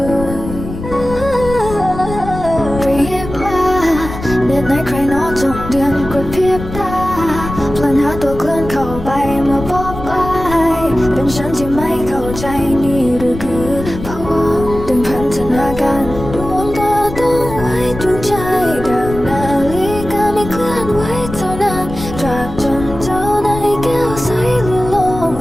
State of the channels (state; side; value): noise; left; rumble, 10 dB below the sound